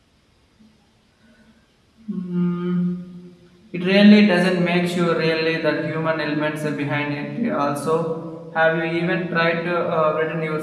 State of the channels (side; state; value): both; identical; correlation 1.00